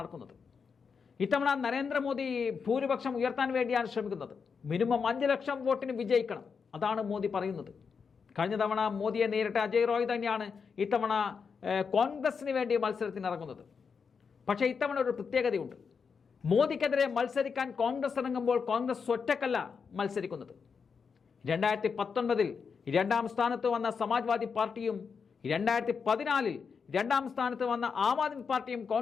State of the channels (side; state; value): right; quieter; 5.8 dB